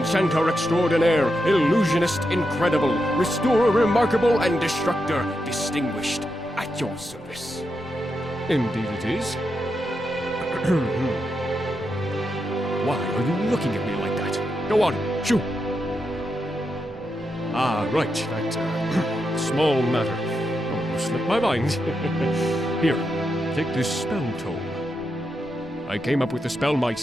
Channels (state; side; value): normal; both; correlation 0.85